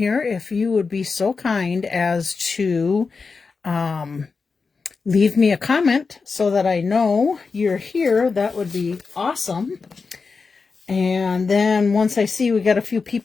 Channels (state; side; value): quieter; right; 4.7 dB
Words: if you would be so kind as to leave me a comment so that I know you're here, that would be awesome. And then once I see we got a few